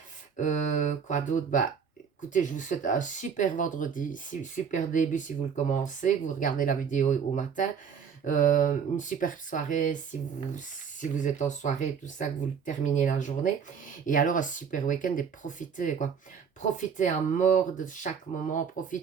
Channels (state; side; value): quieter; left; 6.8 dB